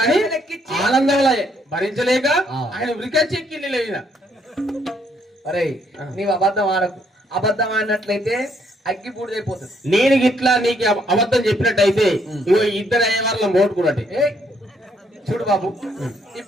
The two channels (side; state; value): both; normal; correlation 0.70